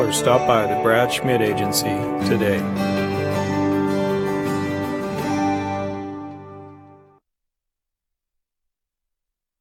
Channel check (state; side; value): identical; both; correlation 1.00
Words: stop by the Brad Schmidt Agency today.